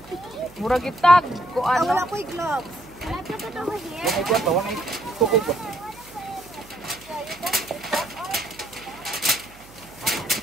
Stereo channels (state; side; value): noise; right; hum, 24 dB below the sound